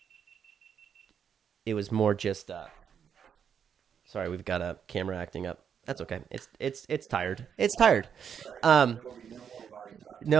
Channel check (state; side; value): quieter; left; 7.8 dB